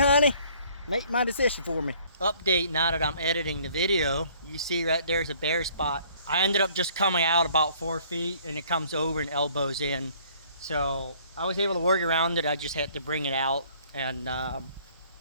Make my decision for me. Update now that I'm editing the video. You see right there's a bare spot. I ended up just coming out about 4 feet, and it comes over and elbows in. So I was able to work around it. I just had to bring it out, and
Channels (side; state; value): both; inverted; correlation -0.58